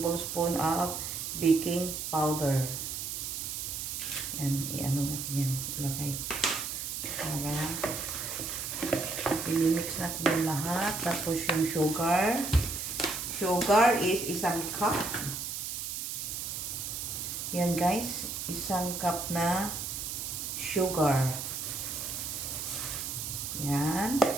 of baking powder. Yan, i-ano natin yan. Ilagay. Para i-mix natin yung lahat. Tapos yung sugar. Sugar is 1 cup. Yan guys. 1 cup na sugar. Yan.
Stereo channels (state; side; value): noise; right; hiss, 4 dB below the sound